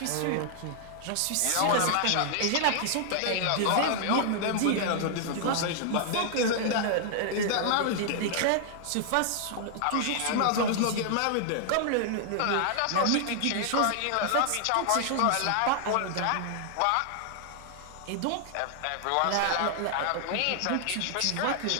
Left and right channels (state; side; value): different; both; correlation -0.01